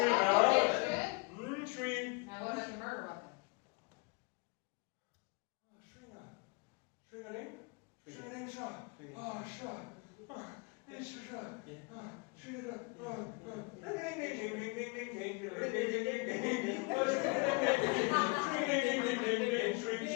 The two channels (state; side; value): quieter; right; 30.6 dB